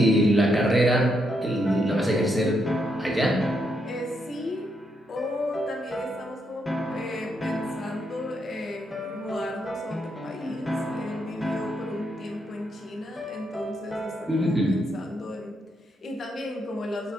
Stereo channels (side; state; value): both; normal; correlation 0.79